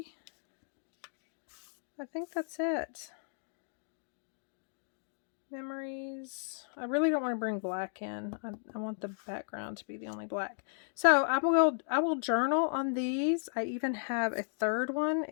it. Memories. I really don't want to bring black in. I want the background to be the only black. So I will journal on these. I even have a third one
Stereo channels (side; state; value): right; silent; digital silence